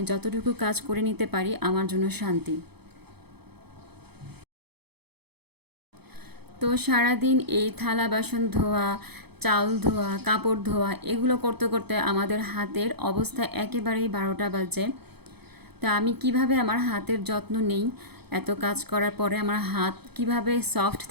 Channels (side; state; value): left; late; 0.97 ms